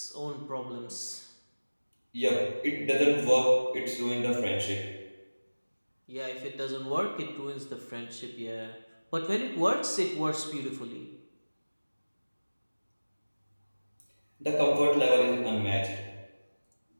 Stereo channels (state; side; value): inverted; both; correlation -1.00